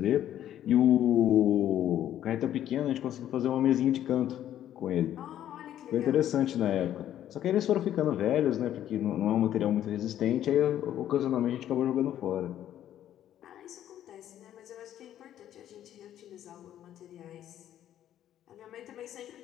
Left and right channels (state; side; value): quieter; right; 11.5 dB